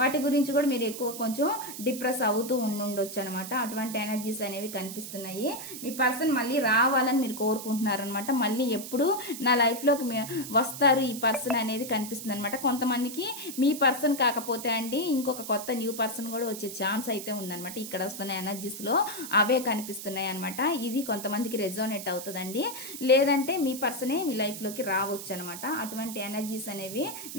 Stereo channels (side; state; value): right; noise; hiss, 10 dB below the sound